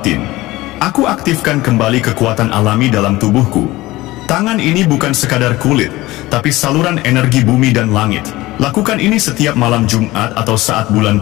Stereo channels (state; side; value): quieter; right; 18.8 dB